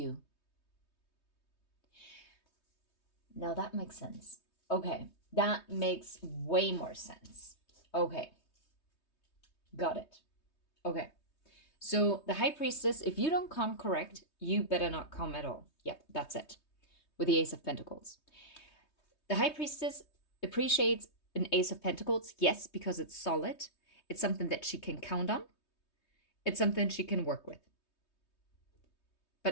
Now that makes sense. Okay, that makes way more sense. Okay, got it. Okay, so the high priestess, if you don't come correct, you better not come at all. Yep, that's it. With the Ace of Pentacles. The high priestess appreciates an Ace of Pentacles, yes, because it's solid. It's something that she can count on. It's something she can work with.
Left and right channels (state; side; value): late; right; 3.2 ms